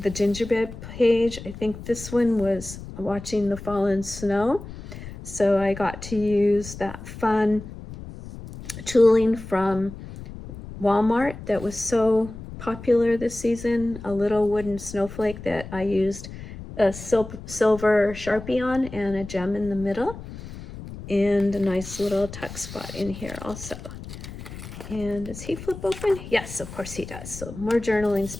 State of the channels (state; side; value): noise; left; rumble, 13 dB below the sound